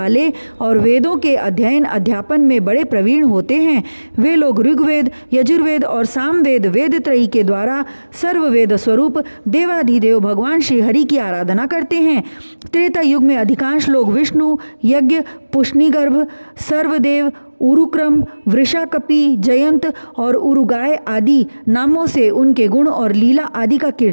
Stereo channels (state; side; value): inverted; both; correlation -1.00